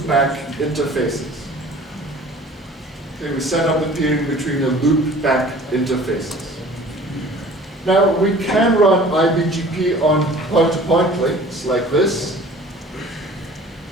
interfaces. Okay, we set up the peering between the loopback interfaces. Now, we can run IBGP on point-to-point links like this.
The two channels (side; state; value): both; normal; correlation 0.47